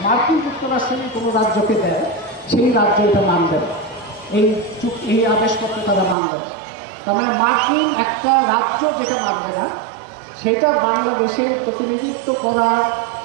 মার্কিন যুক্তরাষ্ট্রের কোনো রাজ্যকে দেয়, সেই রাজ্য এটা মানবে না, এই আদেশপত্র তারা মানবে না। তার মানে মার্কিন একটা রাজ্য যেটা মানবে না সেটা বাংলাদেশের প্রতিনিধিত্ব করা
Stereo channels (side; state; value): left; drops out; at 6.2 s